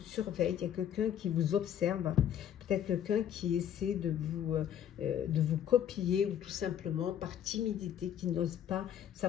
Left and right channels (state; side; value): quieter; right; 9.9 dB